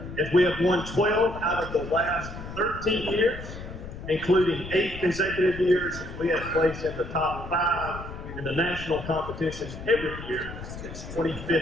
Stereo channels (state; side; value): noise; left; rumble, 11 dB below the sound